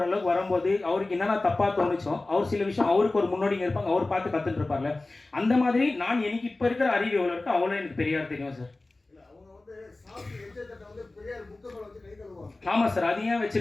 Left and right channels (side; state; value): right; quieter; 3.1 dB